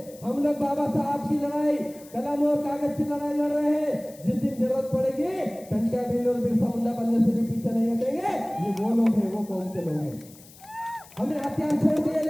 हम लोग बाबा साहब की लड़ाई, कलम और कागज की लड़ाई लड़ रहे हैं। जिस दिन जरूरत पड़ेगी, टंटा भील और बिरसा मुंडा बनने से भी पीछे नहीं हटेंगे। ये वो लोग हैं, वो कौन से लोग हैं? हमने हथियार छोड़ दिए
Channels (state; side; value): noise; left; hiss, 22 dB below the sound